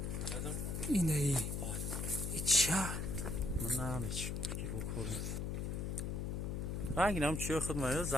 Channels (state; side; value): noise; left; hum, 2 dB below the sound